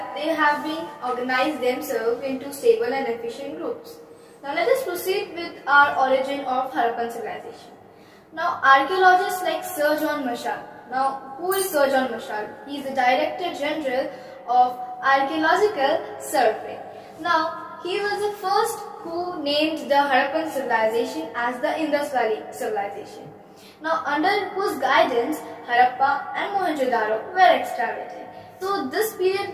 they have been organized themselves into stable and efficient groups. Now let us proceed with our origin of Harappan civilization. Now archaeologists like Sir John Marshall. Now who is Sir John Marshall? He is the Director General of Archaeological Survey. Now he was the first who named the Harappan civilization as the Indus Valley civilization. Now under whose guidance Harappa and Mohenjo-daro were excavated. So this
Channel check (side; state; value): both; identical; correlation 1.00